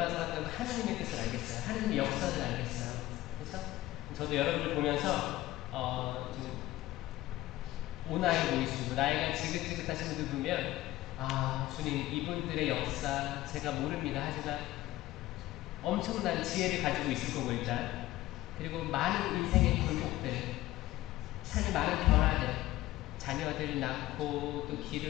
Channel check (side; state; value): right; quieter; 16.4 dB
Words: 살았던 하느님의 뜻을 알겠어요. 하느님의 역사를 알겠어요. 그래서 저도 여러분들 보면서 좀 오나이 보이시고 나이가 지긋지긋하신 분들 보면 아, 주님, 이분들의 역사 제가 모릅니다. 하지만 엄청난 지혜를 가지고 있을 거고 일단. 그리고 많은 인생의 굴곡들, 삶의 많은 변화들, 자녀들 낳고 또